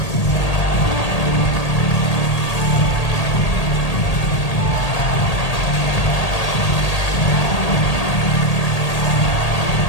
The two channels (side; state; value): right; late; 1.8 ms